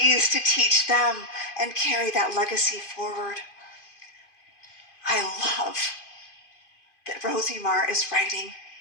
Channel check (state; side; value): late; right; 2.5 ms